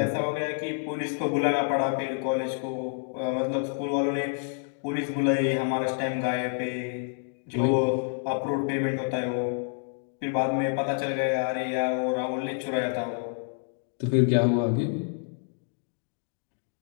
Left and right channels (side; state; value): right; silent; 59 dB below the other